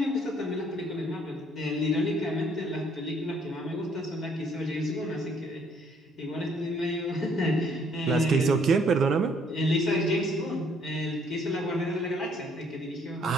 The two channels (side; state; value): both; normal; correlation 0.64